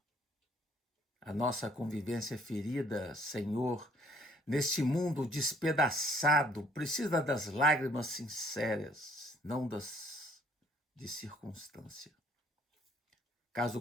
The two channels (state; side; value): normal; both; correlation 0.62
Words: A nossa convivência ferida, Senhor, neste mundo despedaçado, precisa das lágrimas sinceras, não das de circunstância. Caso